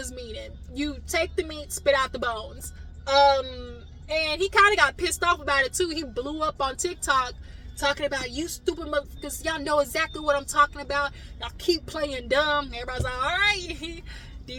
meaning. You take the meat, spit out the bones. And he kind of got pissed off about it too. He blew up on TikTok talking about, you stupid motherfuckers, y'all know exactly what I'm talking about. Y'all keep playing dumb. Everybody's like, all right,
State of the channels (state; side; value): identical; both; correlation 1.00